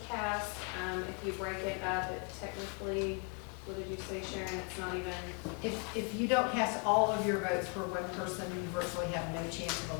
cast. If you break it up, it technically, what did you say, Sharon? It's not even, If you don't cast all of your votes for one person, you virtually have no chance of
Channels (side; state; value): right; quieter; 34.7 dB